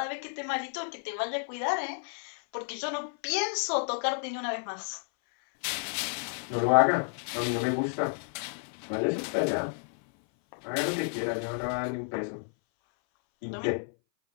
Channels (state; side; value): silent; right; 57 dB below the other